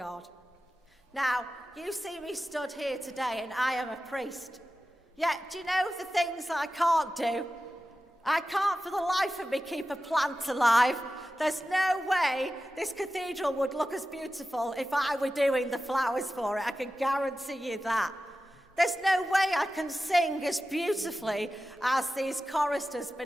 Now, you see me stood here today and I am a priest. Yet, do you know the things I can't do? I can't for the life of me keep a plant alive. There's no way this cathedral would look as beautiful if I were doing the flowers for it. I can guarantee you that. There's no way I can sing as beautifully as these choristers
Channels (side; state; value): both; normal; correlation 0.94